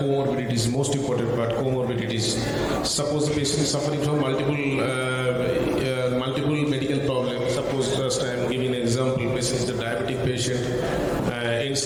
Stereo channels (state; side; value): identical; both; correlation 1.00